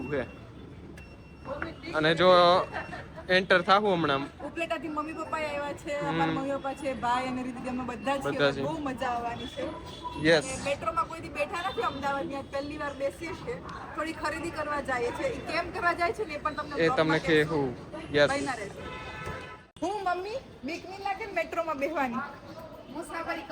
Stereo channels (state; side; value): identical; both; correlation 1.00